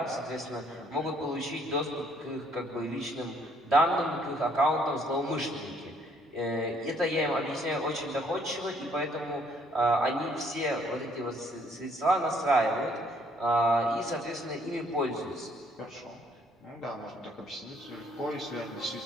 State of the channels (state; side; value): normal; both; correlation 0.65